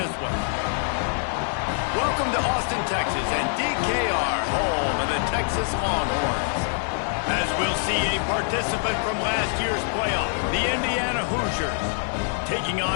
one. Welcome to Austin, Texas, and DKR, home of the Texas Longhorns. As we'll see a participant from last year's playoff, the Indiana Hoosiers, taking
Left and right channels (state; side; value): silent; right; 62 dB below the other